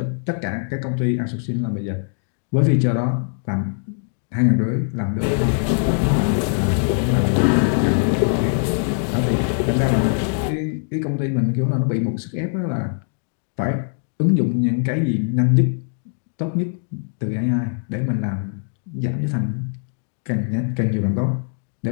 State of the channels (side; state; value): right; silent; digital silence